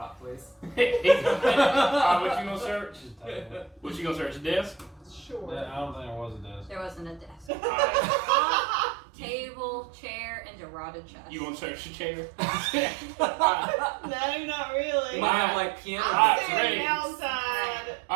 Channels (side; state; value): left; drops out; at 7.5 s